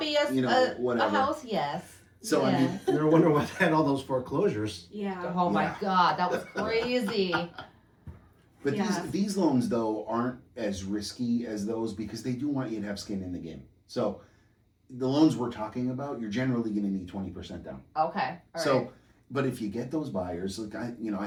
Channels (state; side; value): identical; both; correlation 1.00